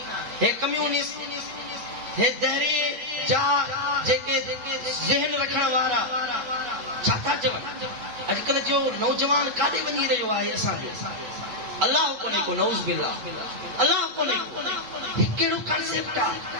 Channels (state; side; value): late; left; 8.2 ms